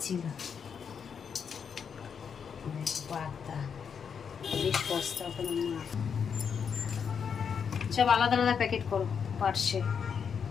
পাতা বেশ সস্তা কোনো মাছ। সব আলাদা আলাদা প্যাকেট করো পার্সে।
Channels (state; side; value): quieter; right; 6.8 dB